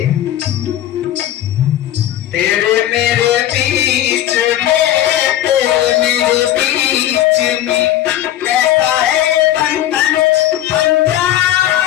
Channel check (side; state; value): right; quieter; 12.6 dB